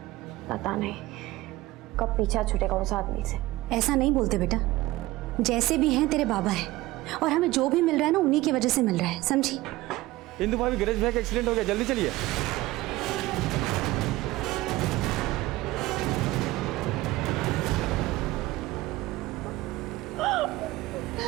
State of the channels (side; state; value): left; quieter; 18.3 dB